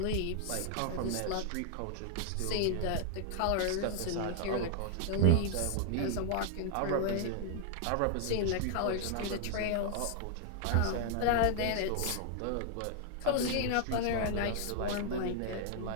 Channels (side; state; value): both; different; correlation 0.00